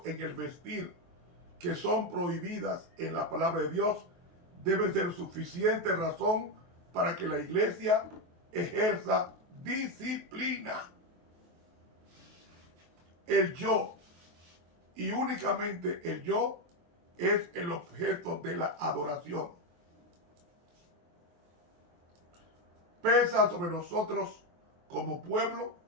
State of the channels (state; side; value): late; left; 23 ms